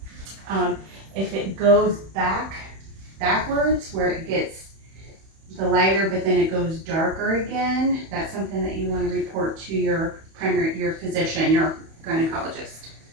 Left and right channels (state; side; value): late; left; 31 ms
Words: If it goes backwards, where it gets the lighter, but then it goes darker again, that's something that you want to report to your physician, your gynecologist.